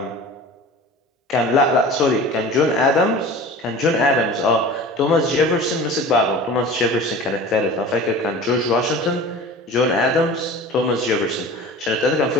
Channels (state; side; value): normal; both; correlation 0.38